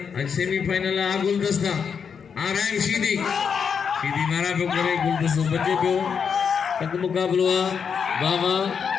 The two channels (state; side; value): quieter; right; 6.6 dB